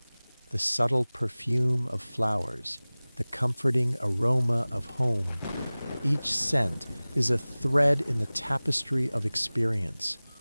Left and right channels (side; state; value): both; inverted; correlation -0.99